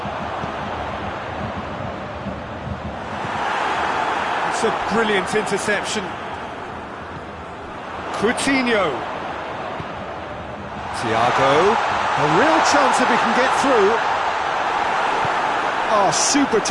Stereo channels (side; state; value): both; identical; correlation 1.00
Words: It's a brilliant interception. Coutinho. Thiago. A real chance if he can get through. Oh, super